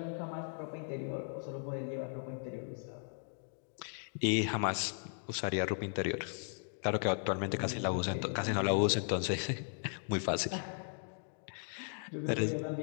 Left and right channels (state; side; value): silent; right; digital silence